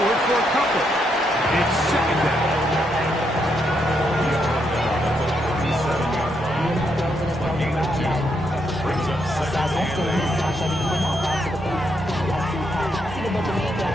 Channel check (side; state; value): both; normal; correlation 0.78